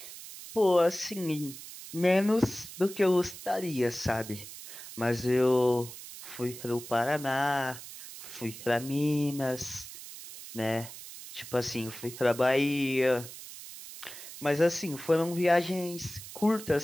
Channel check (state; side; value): noise; right; hiss, 13 dB below the sound